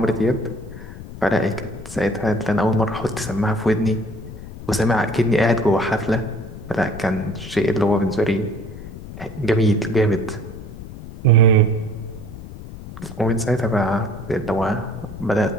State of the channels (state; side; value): noise; left; rumble, 13 dB below the sound